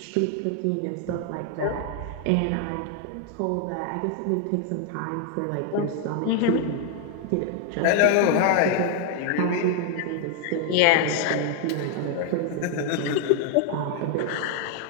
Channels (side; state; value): both; different; correlation 0.00